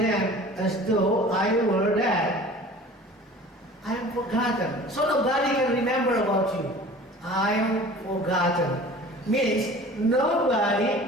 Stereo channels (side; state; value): both; normal; correlation 0.43